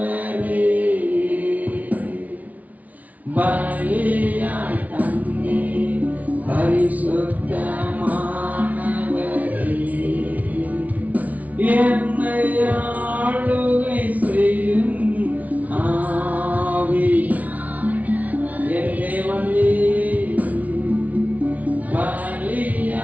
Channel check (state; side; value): late; left; 0.072 ms